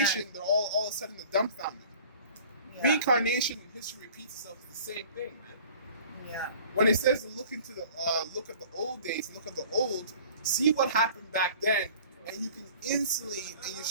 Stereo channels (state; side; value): inverted; both; correlation -0.47